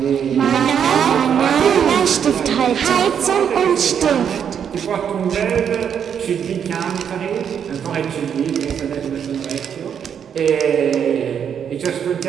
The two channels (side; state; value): left; quieter; 8.1 dB